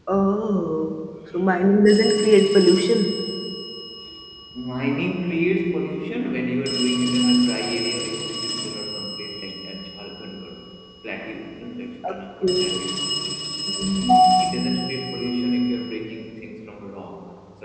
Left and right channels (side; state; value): both; identical; correlation 1.00